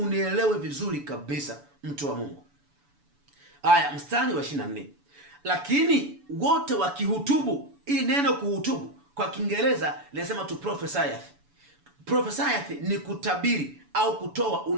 vizuri kabisa, mtu wa Mungu. Haya, mstari wa 24. Lakini wote wakihutubu. Hii neno kuhutubu kwa Kiingereza linasema to prophesieth. Prophesieth ni kutabiri au kutoa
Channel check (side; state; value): left; late; 7.0 ms